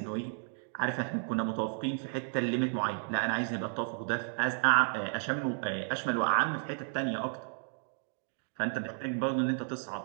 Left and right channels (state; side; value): silent; left; 56 dB below the other